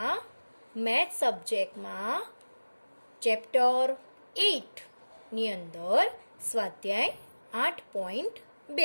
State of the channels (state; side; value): inverted; both; correlation -1.00